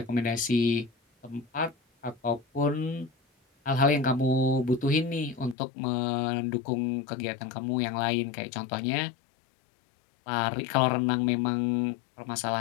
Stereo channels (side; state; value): right; drops out; at 5.6 s